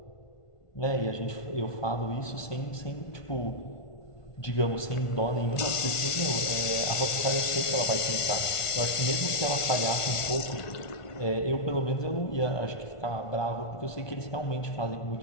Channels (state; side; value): late; right; 1.4 ms